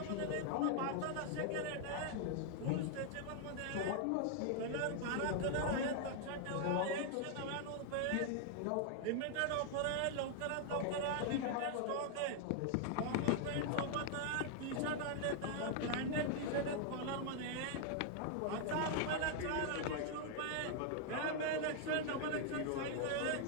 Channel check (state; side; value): different; both; correlation 0.00